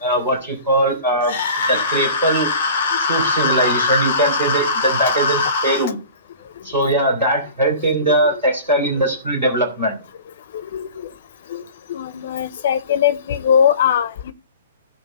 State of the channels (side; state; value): both; inverted; correlation -0.41